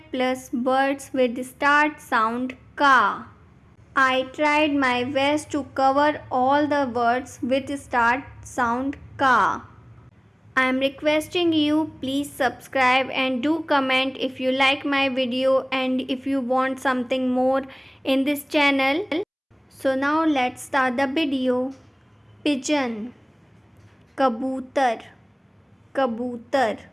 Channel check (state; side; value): identical; both; correlation 1.00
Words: plus words with the start sound ka. I tried my best to cover all the words with start sound ka. I am requesting you please subscribe and do comment if you like my video and if you want something more in this channel. So now let's start the video. Pigeon, kabutar, kabutar,